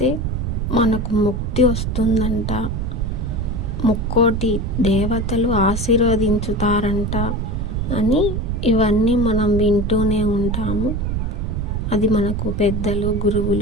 మనకు ముక్తి వస్తుందంట. ముక్కోటి దేవతలు ఆశీర్వదించుతారంట అని ఇవన్నీ మనం వింటూనే ఉంటాము. అది మనకు పెద్దలు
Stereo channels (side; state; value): right; noise; rumble, 1 dB below the sound